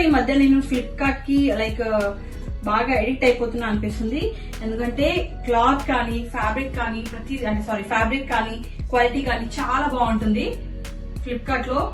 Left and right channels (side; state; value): both; identical; correlation 1.00